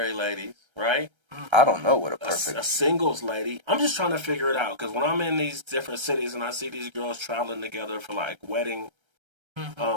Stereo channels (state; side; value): late; left; 1.3 ms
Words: ladies, right? I don't know what a A perfect. singles lady. I'm just trying to figure it out because when I'm in these different cities and I see these girls traveling together for like wedding,